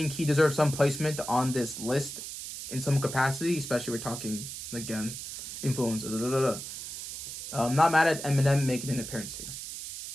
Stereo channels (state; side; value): noise; right; hiss, 9 dB below the sound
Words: he deserves some placement on this list in some capacity, especially we're talking again influence. Not mad at Eminem making an appearance here.